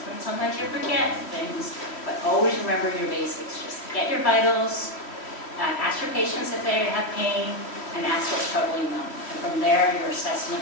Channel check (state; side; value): late; right; 3.1 ms